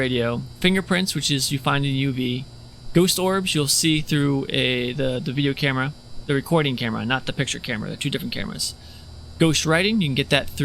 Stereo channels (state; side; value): identical; both; correlation 1.00